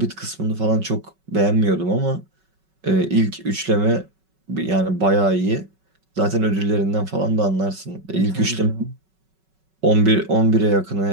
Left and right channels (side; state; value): left; late; 5.3 ms